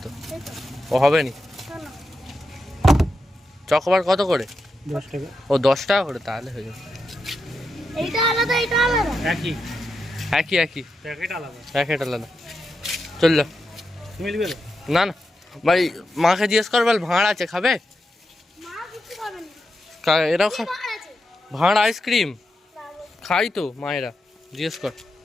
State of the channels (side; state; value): both; normal; correlation 0.87